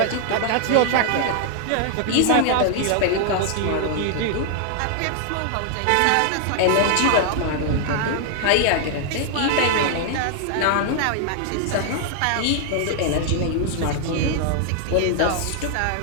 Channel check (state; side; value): different; both; correlation 0.00